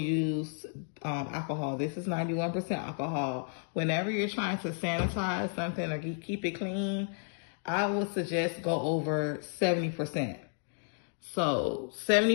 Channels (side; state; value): right; silent; 56 dB below the other